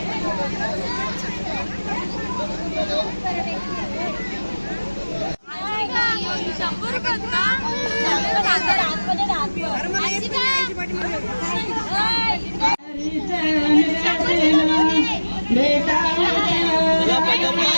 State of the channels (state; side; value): inverted; both; correlation -1.00